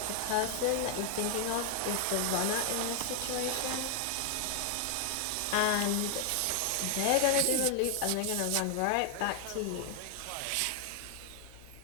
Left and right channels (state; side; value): different; both; correlation 0.00